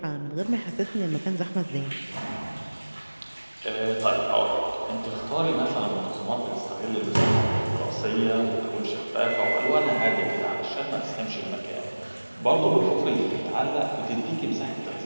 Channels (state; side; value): inverted; both; correlation -1.00